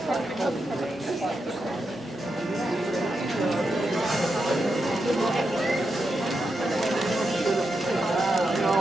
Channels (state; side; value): normal; both; correlation 0.86